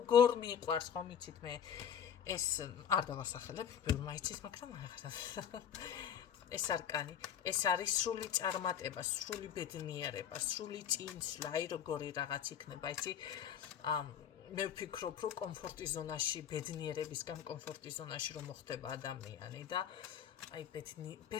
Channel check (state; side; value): quieter; right; 8.7 dB